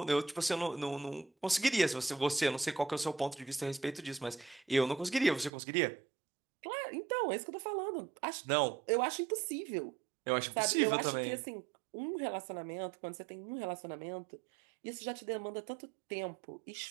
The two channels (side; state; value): left; drops out; at 5.5 s